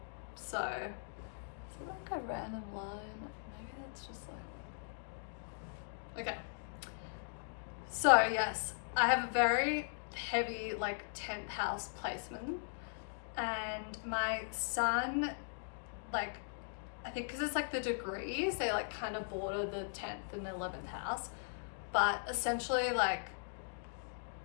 So, is it like a random line? Maybe that's just like, okay. So yes, I have a very heavy like 10th house placement, and my sun, like, I think because it's like the degrees, they like kind of border the 10th and 11th house, but essentially like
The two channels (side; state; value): right; silent; digital silence